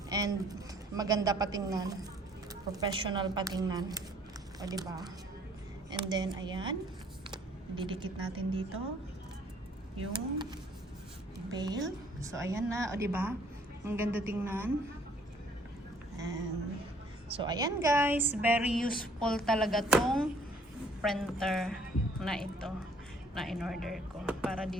and maganda patingnan. Professional patingnan. O, diba? And then, ayan. Didikit natin dito yung bail. So, ayan na. O, diba? Ang ganda tingnan. And, So, ayan guys, very useful talaga tong printer na ito na in-order ko para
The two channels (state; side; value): normal; both; correlation 0.60